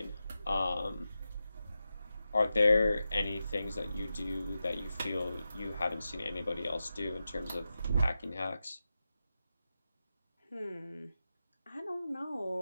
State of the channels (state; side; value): inverted; both; correlation -0.91